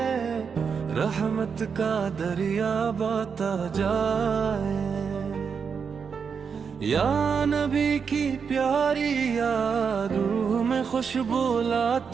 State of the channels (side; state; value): left; quieter; 6.2 dB